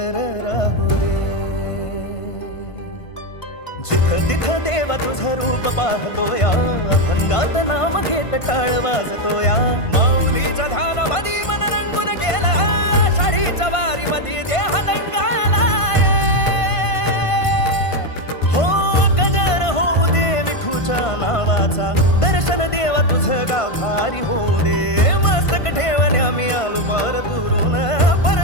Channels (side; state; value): right; late; 1.5 ms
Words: राहू दे. जिथं तिथं देवा तुझं रूप पाहतोया, अभंगात नाम घेत टाळ वाजतोया. माऊलीच्या ध्यानामध्ये मन रंगून गेला, आषाढीच्या वारीमध्ये देह दंगालाय. हो गजर होऊ दे विठूच्या नावाचा, दर्शन देवा तुझं गाव भारी होऊ दे. मस्तक ठेवणे आम्ही आलो पार दुरून,